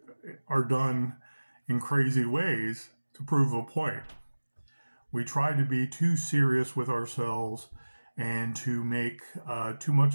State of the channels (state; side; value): inverted; both; correlation -1.00